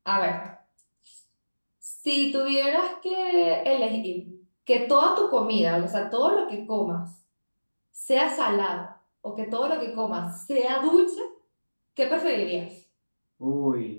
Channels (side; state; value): both; inverted; correlation -1.00